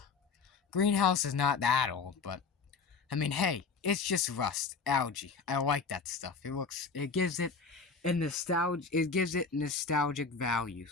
Greenhouse is not that old, but I mean, hey, it's just rust, algae. I like that stuff. It gives it nostalgic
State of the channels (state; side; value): quieter; right; 4.9 dB